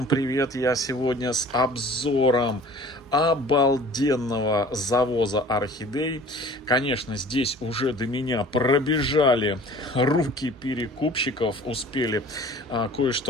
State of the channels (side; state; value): both; normal; correlation 0.46